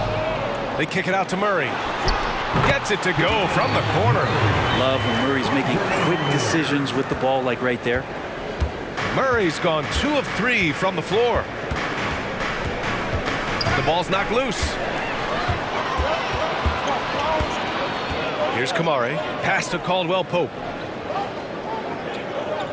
They kick it out to Murray. Gets it to go from the corner. Love when Murray's making quick decisions with the ball, like right there. Murray's gone 2 of 3 from the floor. The ball's knocked loose. Here's Kamari. Pass to Caldwell Pope.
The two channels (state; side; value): identical; both; correlation 1.00